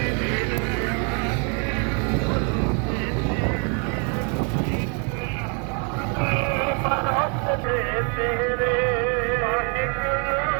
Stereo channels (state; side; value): quieter; left; 37.9 dB